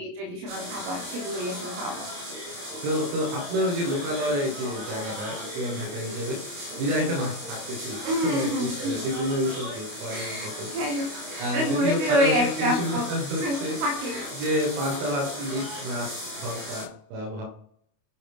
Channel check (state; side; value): late; left; 29 ms